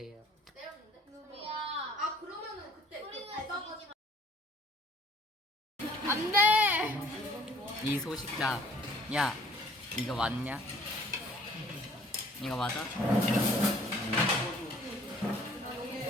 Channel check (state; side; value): normal; both; correlation 0.56